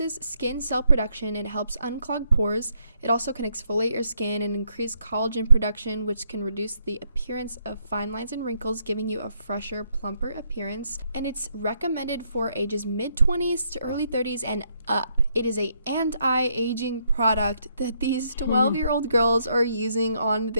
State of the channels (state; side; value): inverted; both; correlation -0.75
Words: skin cell production and helps unclog pores. It also can exfoliate your skin and increase collagen production, which can reduce the appearance of fine lines and wrinkles, giving you a fresher, plumper appearance. And it's recommended for ages mid-20s to early 30s and up. It is a anti-aging product that these 12-year-old girls are using on